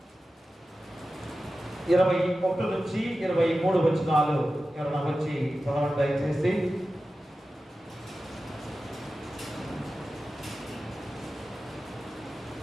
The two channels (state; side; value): normal; both; correlation 0.94